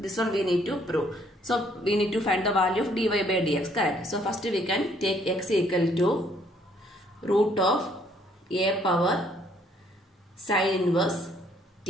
this one we need to prove. So we need to find the value of dy by dx, correct? So first we can take x equal to root of a power sin inverse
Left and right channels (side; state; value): both; normal; correlation 0.65